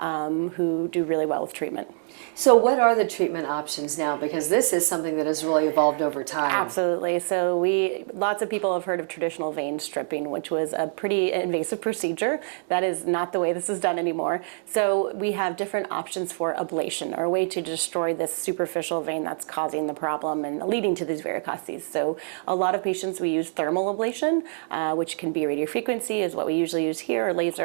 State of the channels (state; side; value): silent; left; 61 dB below the other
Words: do really well with treatment. So what are the treatment options now? Because this is something that has really evolved over time. Absolutely. So lots of people have heard of traditional vein stripping, which was a pretty invasive procedure. That is not the way this is done anymore. So we have different options for ablation, or a way to destroy this superficial vein that's causing the problem and leading to these varicoses. So a lot of patients, we use thermal ablation, which can be radiofrequency is what we usually use here, or